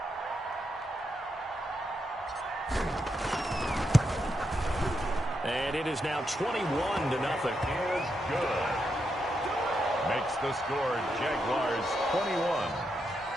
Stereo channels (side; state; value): both; normal; correlation 0.83